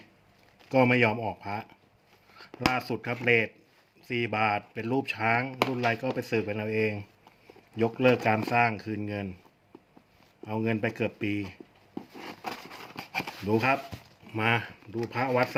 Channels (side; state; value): both; identical; correlation 1.00